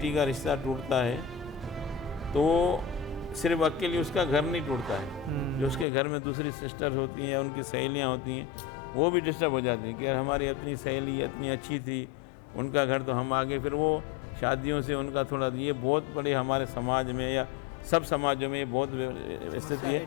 का रिश्ता टूटता है तो सिर्फ अकेले उसका घर नहीं टूटता है, जो उसके घर में दूसरी सिस्टर्स होती हैं, उनकी सहेलियां होती हैं, वो भी डिस्टर्ब हो जाती हैं कि हमारी अपनी सहेली इतनी अच्छी थी, उनका घर तो हम आगे, फिर वो शादियों से उनका थोड़ा, ये बहुत बड़े हमारे समाज में या सब समाजों में बहुत समस्या है,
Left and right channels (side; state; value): right; drops out; at 5.9 s